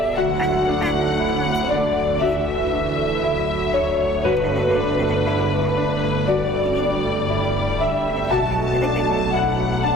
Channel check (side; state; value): both; normal; correlation 0.58